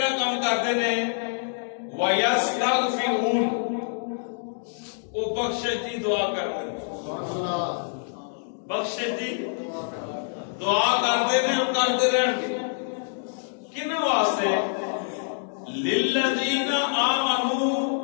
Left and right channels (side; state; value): right; silent; digital silence